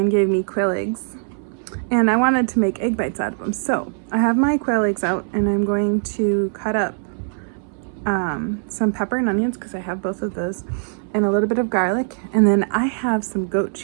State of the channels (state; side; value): silent; left; 65 dB below the other